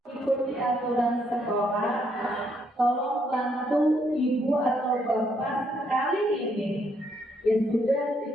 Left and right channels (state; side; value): normal; both; correlation 0.73